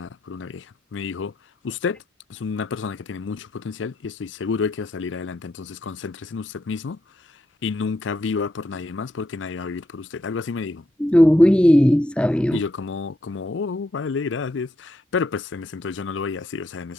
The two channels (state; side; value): normal; both; correlation 0.80